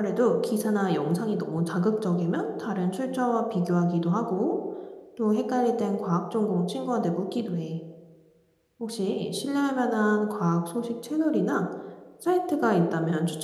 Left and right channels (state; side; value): identical; both; correlation 1.00